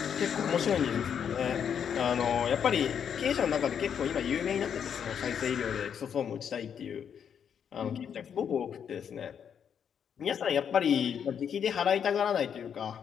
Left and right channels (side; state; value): right; quieter; 8.0 dB